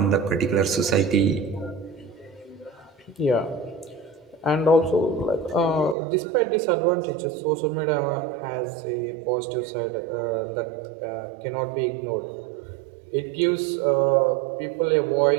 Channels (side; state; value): left; drops out; at 6.0 s